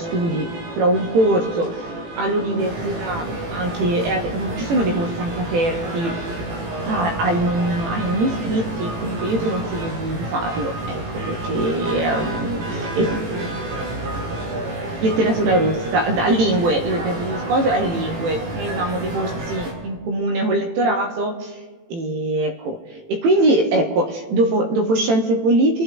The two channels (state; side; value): late; left; 18 ms